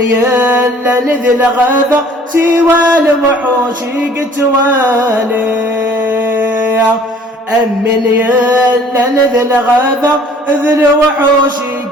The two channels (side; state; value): both; normal; correlation 0.53